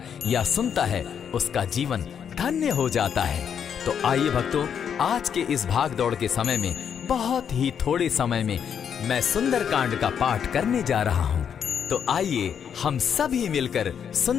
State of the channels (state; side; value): quieter; right; 7.9 dB